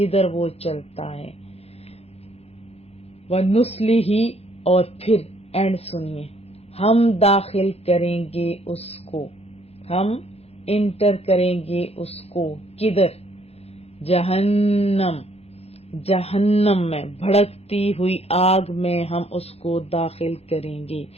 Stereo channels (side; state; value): right; late; 0.30 ms